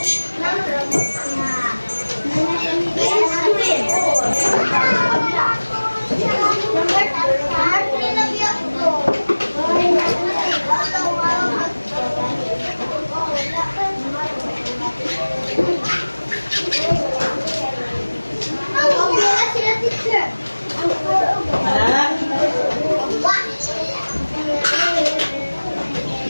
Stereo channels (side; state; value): both; inverted; correlation -1.00